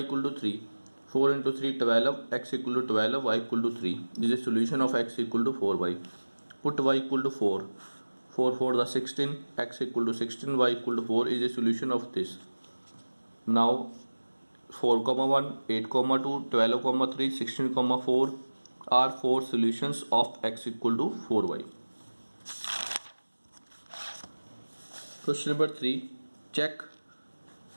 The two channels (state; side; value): inverted; both; correlation -1.00